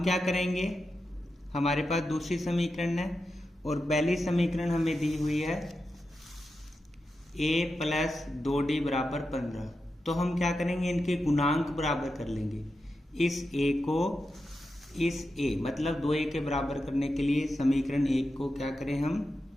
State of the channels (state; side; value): normal; both; correlation 0.89